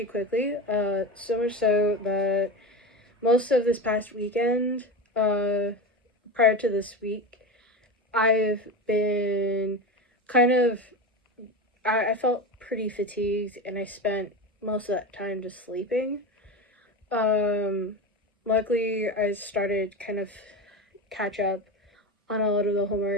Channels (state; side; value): normal; both; correlation 0.23